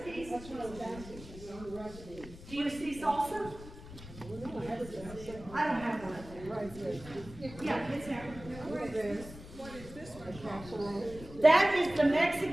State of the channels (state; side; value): noise; left; rumble, 15 dB below the sound